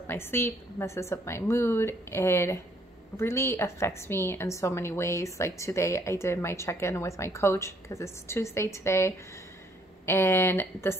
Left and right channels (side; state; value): both; normal; correlation 0.66